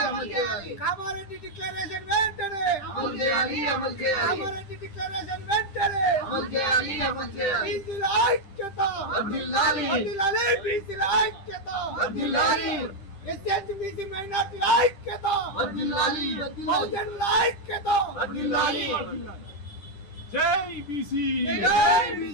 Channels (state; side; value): late; right; 10 ms